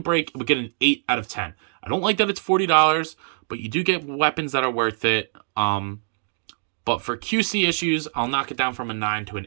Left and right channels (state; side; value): silent; left; digital silence